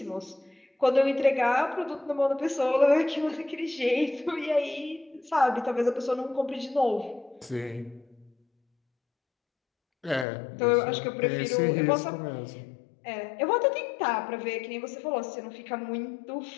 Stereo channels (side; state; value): right; drops out; at 10.2 s